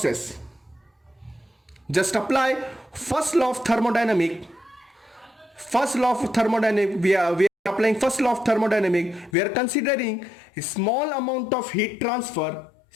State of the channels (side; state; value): right; drops out; at 9.3 s